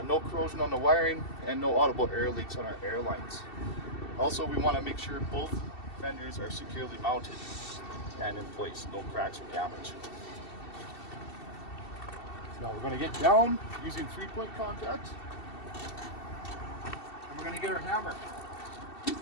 No corrosion on the wiring and no audible air leaks on our air lines. Also, we want to make sure both fenders are securely mounted and in place, no cracks or damage. Now we're going to get down using 3-point contact, and we're going to get our hammer.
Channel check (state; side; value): late; right; 2.7 ms